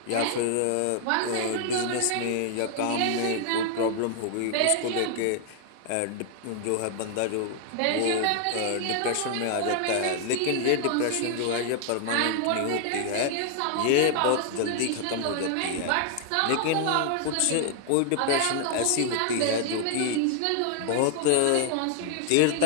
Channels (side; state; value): both; different; correlation 0.00